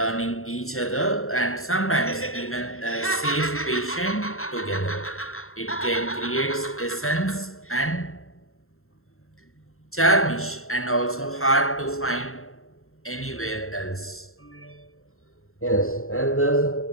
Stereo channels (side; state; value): right; late; 0.62 ms